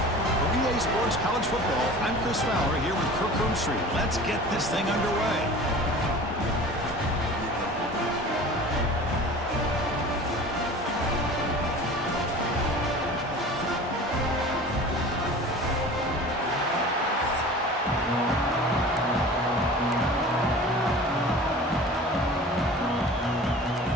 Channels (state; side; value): normal; both; correlation 0.40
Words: For EA Sports College Football, I'm Chris Fowler here with Kirk Street. Let's get this thing underway.